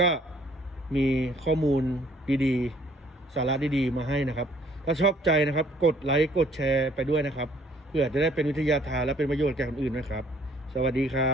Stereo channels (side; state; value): both; normal; correlation 0.60